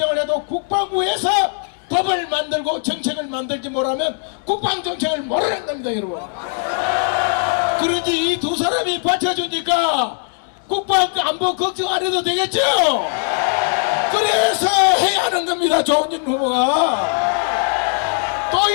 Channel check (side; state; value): right; silent; 62 dB below the other